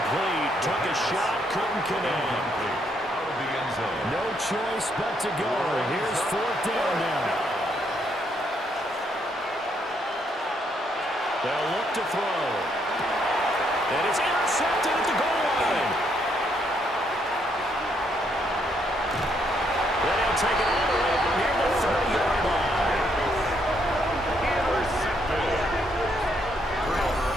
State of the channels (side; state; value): both; normal; correlation 0.73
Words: Took a shot, couldn't connect. Out of the end zone. No choice but to go. Here's fourth down now. They'll look to throw. And it's intercepted at the goal line. Then he'll take it all the way out near the 30-yard line. Intercepted. Turnover